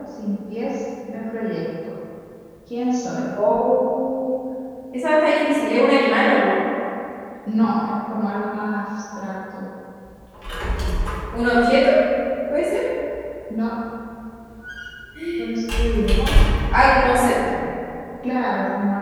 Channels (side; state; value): both; identical; correlation 1.00